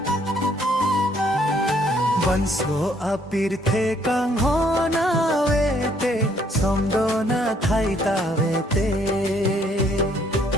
Banso apirthe kang hona vete somdona thaita vete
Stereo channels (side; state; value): both; normal; correlation 0.66